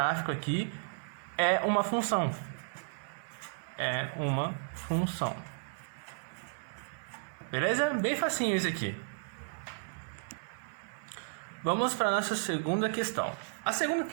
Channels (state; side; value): silent; left; 55 dB below the other